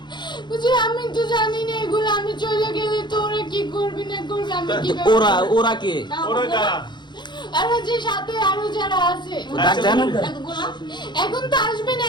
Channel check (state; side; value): late; right; 0.22 ms